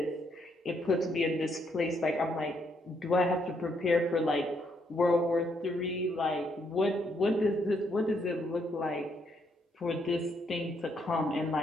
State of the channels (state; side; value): normal; both; correlation 0.74